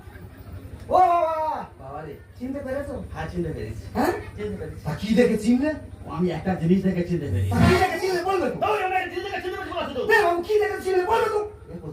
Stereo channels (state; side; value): identical; both; correlation 1.00